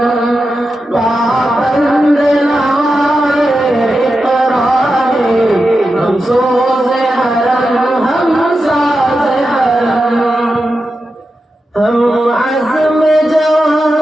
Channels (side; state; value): both; normal; correlation 0.90